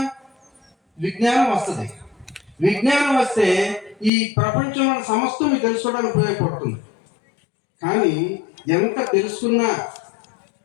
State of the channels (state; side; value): drops out; right; at 4.1 s